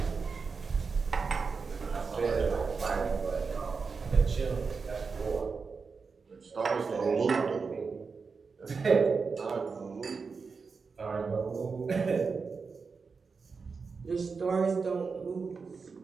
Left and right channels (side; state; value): left; quieter; 5.0 dB